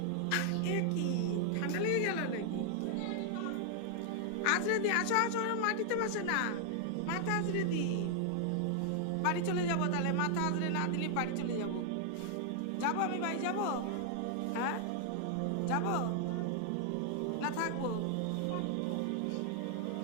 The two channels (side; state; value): both; different; correlation 0.00